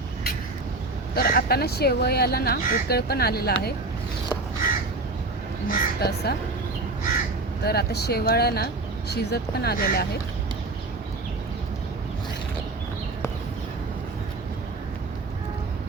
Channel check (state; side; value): quieter; left; 3.2 dB